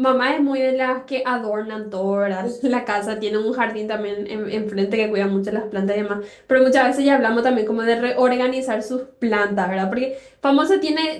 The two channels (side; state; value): both; identical; correlation 1.00